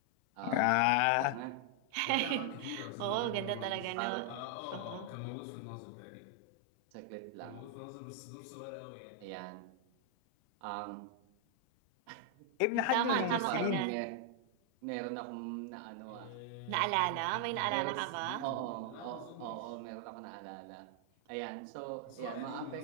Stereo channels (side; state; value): both; different; correlation 0.00